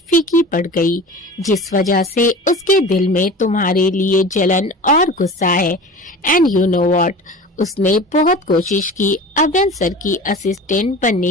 पड़ गई, जिस वजह से उसके दिल में तुम्हारे लिए जलन और गुस्सा है। एंड यू नो व्हाट, उसने बहुत कोशिश की अवेन सर की असिस्टेंट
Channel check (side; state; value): both; normal; correlation 0.36